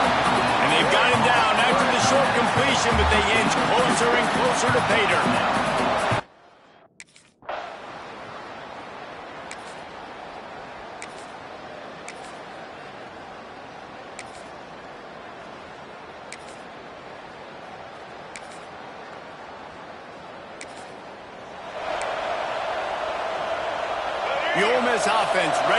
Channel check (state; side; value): identical; both; correlation 1.00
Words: And they've got him down after the short completion, but they inch closer and closer to pay dirt. The Ole Miss offense